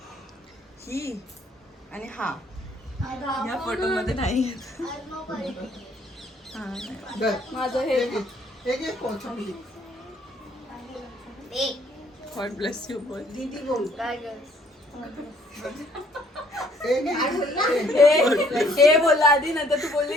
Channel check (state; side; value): normal; both; correlation 0.63